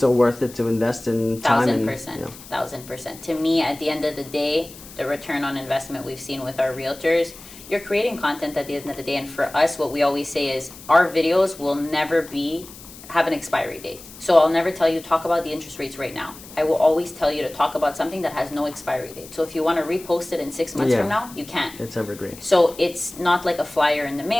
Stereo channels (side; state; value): left; noise; hiss, 18 dB below the sound